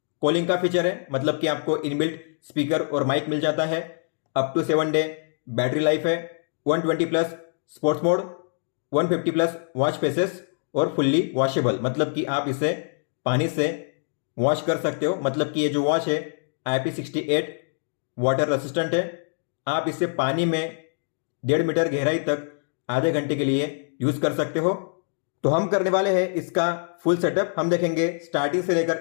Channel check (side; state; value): right; silent; digital silence